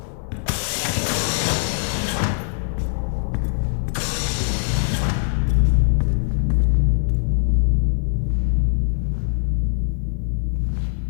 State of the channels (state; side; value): silent; right; digital silence